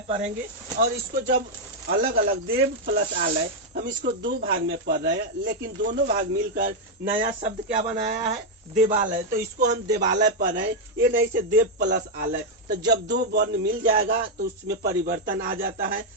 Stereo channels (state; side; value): normal; both; correlation 0.00